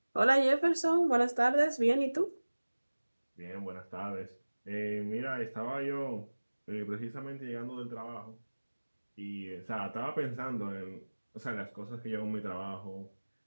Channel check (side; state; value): both; inverted; correlation -1.00